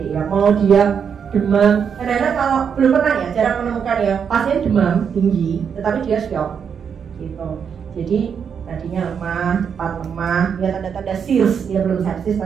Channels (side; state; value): left; quieter; 7.1 dB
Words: Mau dia demam, kadang-kadang kalau belum pernah ya, jarang menemukan ya pasien demam tinggi, tetapi dia shock gitu. Jadi tadinya lemah, cepat lemah, ya tanda-tanda SIRS, dia belum sepsis